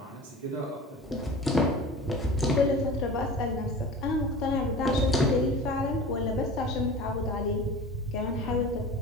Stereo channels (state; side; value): normal; both; correlation 0.36